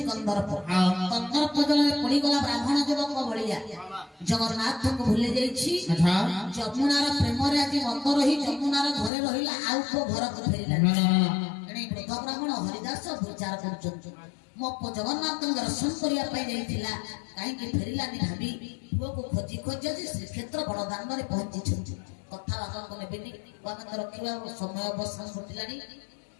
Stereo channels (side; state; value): right; drops out; at 9.1 s